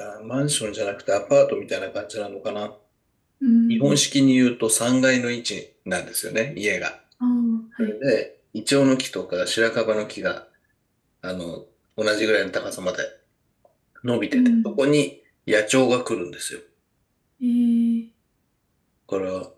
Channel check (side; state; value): both; identical; correlation 1.00